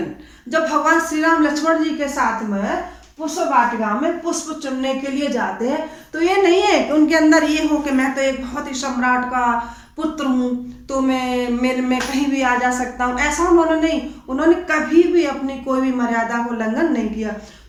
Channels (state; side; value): identical; both; correlation 1.00